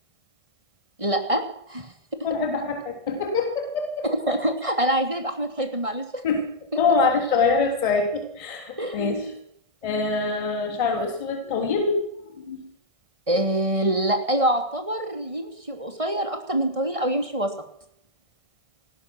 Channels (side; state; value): left; late; 1.6 ms